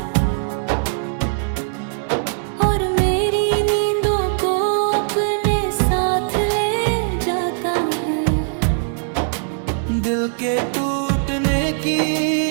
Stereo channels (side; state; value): left; silent; digital silence